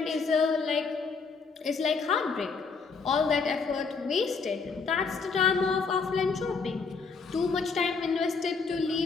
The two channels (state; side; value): quieter; right; 4.9 dB